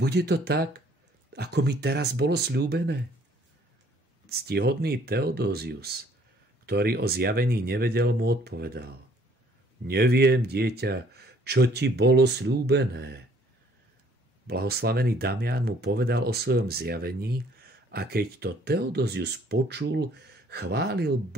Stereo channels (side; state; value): both; normal; correlation 0.60